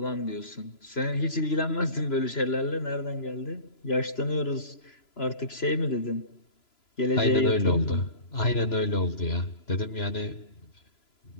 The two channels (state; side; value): late; right; 3.0 ms